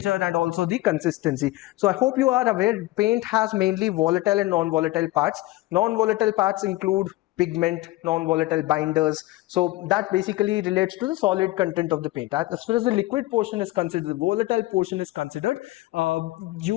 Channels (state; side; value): quieter; right; 18.6 dB